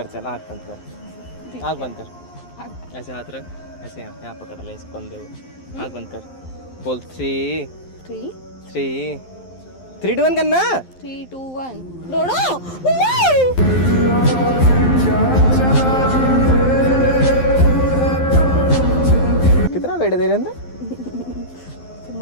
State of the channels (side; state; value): right; late; 11 ms